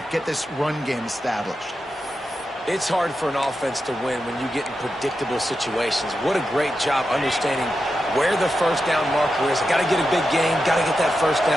Get this run game established. It's hard for an offense to win when you get in predictable situations. What a great job understanding where the 1st down marker is. Got to get a big gain. Got to get that 1st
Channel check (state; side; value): normal; both; correlation 0.89